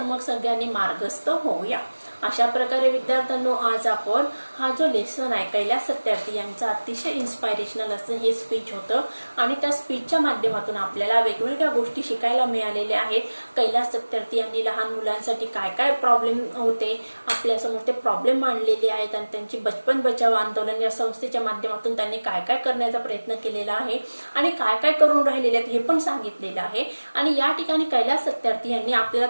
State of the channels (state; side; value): inverted; both; correlation -1.00